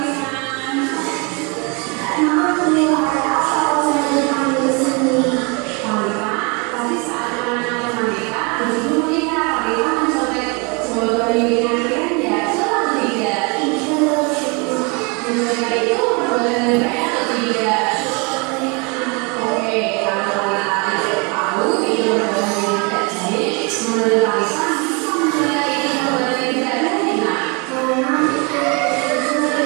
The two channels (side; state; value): left; quieter; 31.2 dB